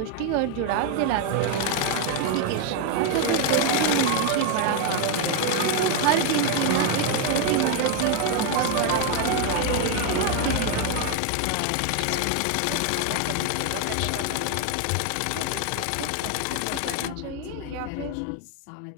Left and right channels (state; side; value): different; both; correlation 0.01